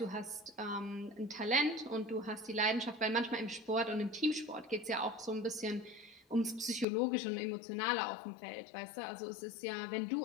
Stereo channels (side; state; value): right; drops out; at 6.9 s